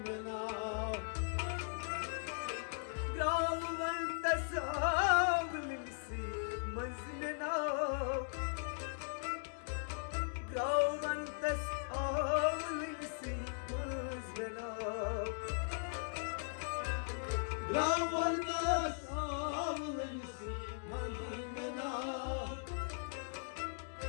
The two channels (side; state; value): right; silent; digital silence